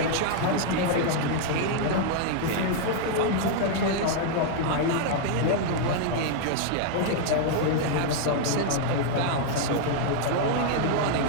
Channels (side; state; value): both; different; correlation 0.00